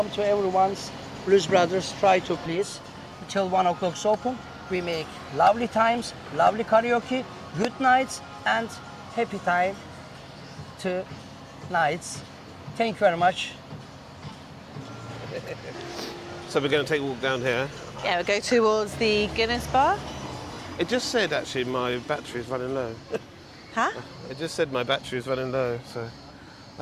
to everyone's Blues Brothers. Try to please. Till 1 o'clock open. We make lovely times, lovely karaoke, good nights, and happy time to nights. Thank you very much. So we're going to take a walk down here. Yeah, we'll go towards the Guinness bar. It just said actually my battery is running low. Huh? It just said my battery is running low, so.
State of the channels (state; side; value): identical; both; correlation 1.00